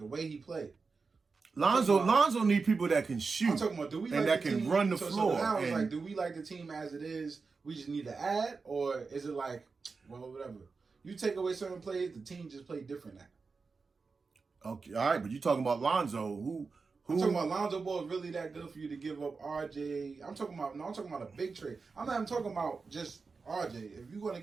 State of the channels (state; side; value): quieter; left; 4.5 dB